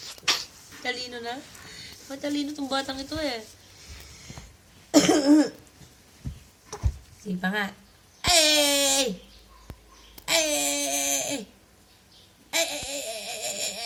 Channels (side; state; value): both; identical; correlation 1.00